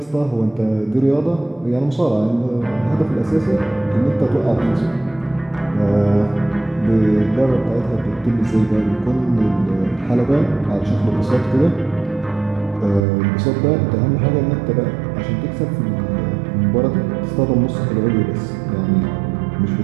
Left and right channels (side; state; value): left; drops out; at 13.1 s